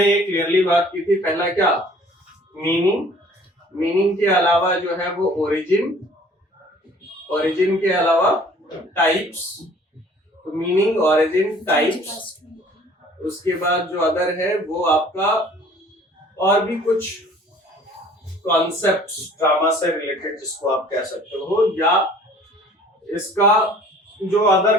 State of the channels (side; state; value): both; normal; correlation 0.52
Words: ये क्लियरली बात की थी। पहला क्या, मीनिंग के अलावा जो है वो ओरिजिन के अलावा टाइप्स, तो मीनिंग, ओरिजिन, टाइप्स। उसके बाद जो अदर है वो आपका और भी कुछ कॉन्सेप्ट्स ड्रामा से रिलेटेड जिसको आप कह सकते हो, या इसका जो अदर